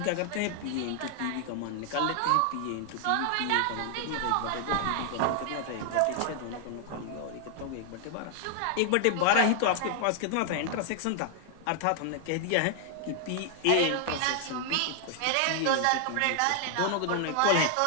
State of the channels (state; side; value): different; both; correlation 0.00